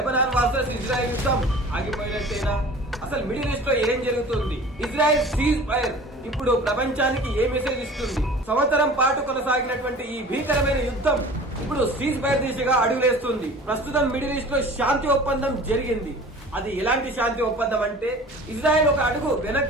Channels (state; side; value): normal; both; correlation 0.42